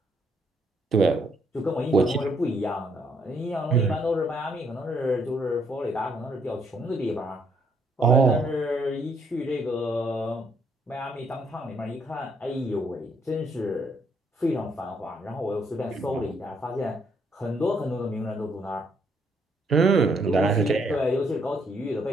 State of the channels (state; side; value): normal; both; correlation 0.71